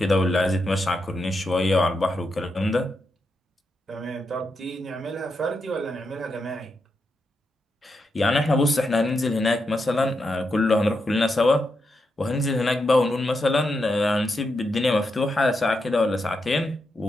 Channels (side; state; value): both; normal; correlation 0.85